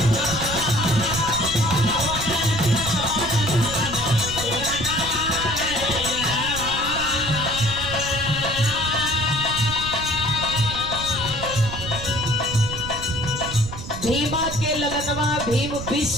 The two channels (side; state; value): right; noise; rumble, 9 dB below the sound